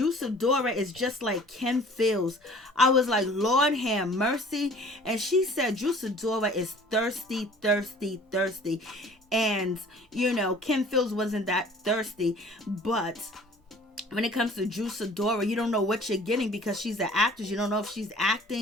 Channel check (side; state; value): both; normal; correlation 0.49